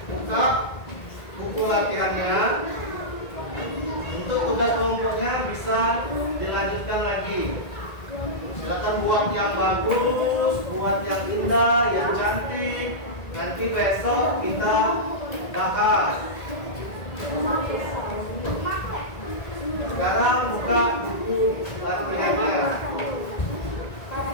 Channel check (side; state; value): right; late; 1.9 ms